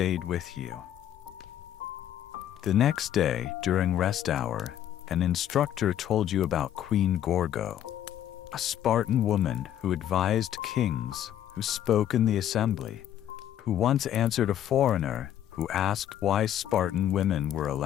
with you. The next day, during rest hour, an instructor told you about Queen Gorgo, a Spartan woman who advised kings, who spoke in the assembly, who once answered a foreigner who asked why Spartan women were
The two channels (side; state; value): right; quieter; 11.1 dB